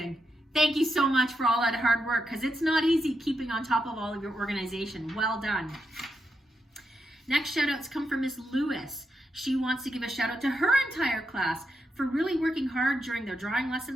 Thank you so much for all that hard work because it's not easy keeping on top of all of your organization. Well done. Next shout outs come from Miss Lewis. She wants to give a shout out to her entire class for really working hard during their drawing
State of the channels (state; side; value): normal; both; correlation 0.84